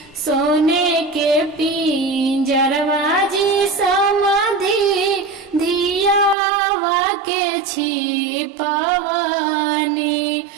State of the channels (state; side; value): drops out; left; at 6.4 s